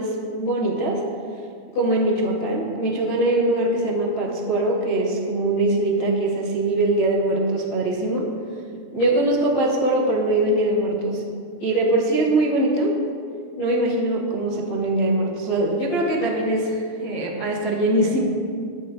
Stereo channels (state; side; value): late; right; 23 ms